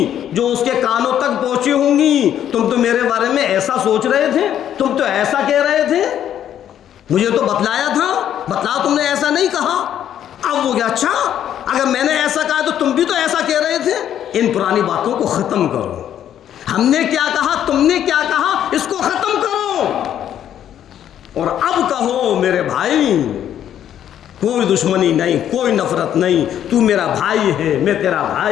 जो उसके कानों तक पहुंची होंगी, तुम तो मेरे बारे में ऐसा सोच रहे थे, तुम तो ऐसा कह रहे थे, मुझे तो बतलाया था, बतलाओ तुमने ऐसा नहीं कहा। अब वो क्या, अच्छा अगर मैंने ऐसा कहा तो तुम भी तो ऐसा कह रहे थे। इन पुरानी बातों को खत्म करो। हमने क्या कहा, तुमने क्या कहा, इसको खत्म करो और अब कहो मेरे भाई, कोई दुश्मनी नहीं, कोई नफरत नहीं, तू मेरा भाई है, मैं तेरा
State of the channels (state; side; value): quieter; right; 10.4 dB